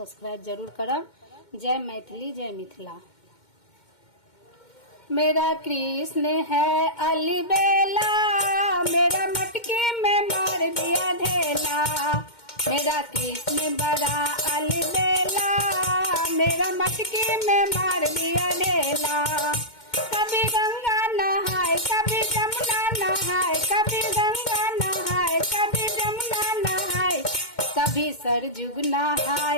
जरूर करब। जय मैथिली जय मिथिला। मेरा कृष्ण है अलबेला, मेरा मटके में मार दिया ढेला। मेरा कृष्ण बड़ा अलबेला, मेरा मटके में मार दिया ढेला। कभी गंगा नहाए कभी जमुना नहाए, कभी गंगा नहाए कभी जमुना नहाए, कभी सरजुग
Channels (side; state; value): right; late; 2.1 ms